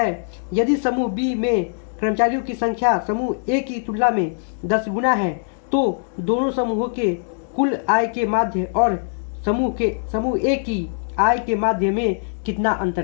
यदि समूह B में कर्मचारियों की संख्या समूह A की तुलना में 10 गुना है तो दोनों समूहों के कुल आय के माध्य और समूह A की आय के माध्य में कितना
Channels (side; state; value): right; silent; 64 dB below the other